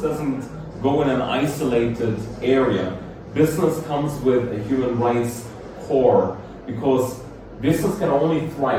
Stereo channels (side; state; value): both; identical; correlation 1.00